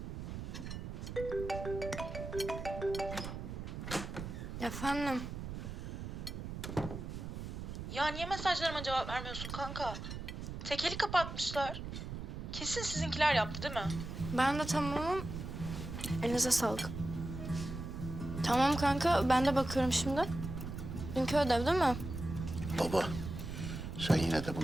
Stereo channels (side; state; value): right; noise; rumble, 7 dB below the sound